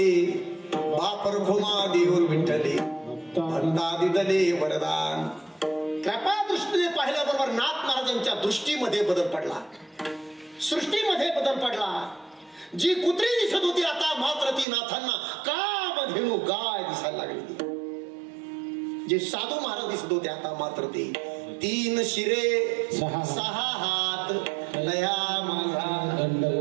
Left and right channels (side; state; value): left; drops out; at 14.7 s